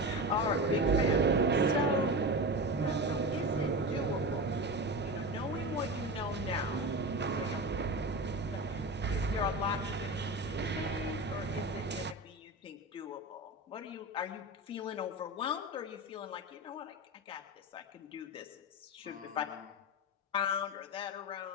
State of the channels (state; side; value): normal; both; correlation 0.25